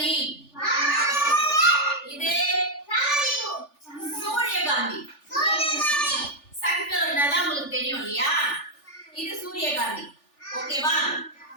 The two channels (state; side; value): late; right; 3.4 ms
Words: இது சூரியகாந்தி. சன்ஃப்ளவர்னா உங்களுக்கு தெரியும் இல்லையா? இது சூரியகாந்தி. ஓகேவா?